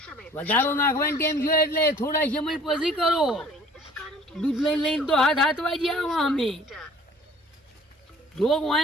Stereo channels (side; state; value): both; normal; correlation 0.52